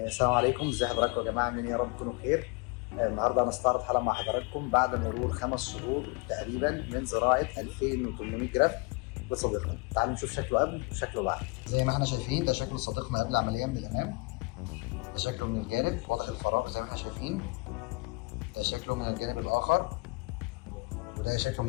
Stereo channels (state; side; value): quieter; right; 27.7 dB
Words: عليكم، ازي حضراتكم يا جماعه؟ عاملين ايه؟ يا رب تكونوا بخير. النهارده هنستعرض حلقه مع حضراتكم بعد مرور 5 شهور تقريبا من زراعه 2800 جرافت لصديقنا. تعالوا نشوف شكله قبل وشكله بعد. زي ما احنا شايفين ده شكل صديقنا قبل العمليه من الامام، ده شكله من الجانب واضح الفراغ زي ما احنا شايفين، ده شكله من الجانب الاخر، وده شكله